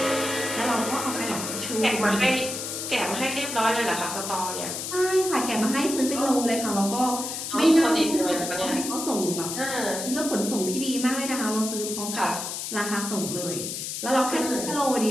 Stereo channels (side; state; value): left; noise; hiss, 5 dB below the sound